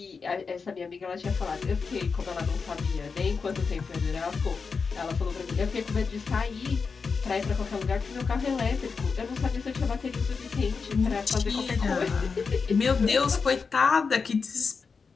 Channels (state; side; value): quieter; right; 5.1 dB